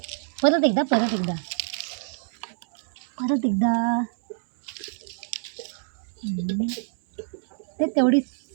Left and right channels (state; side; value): silent; left; digital silence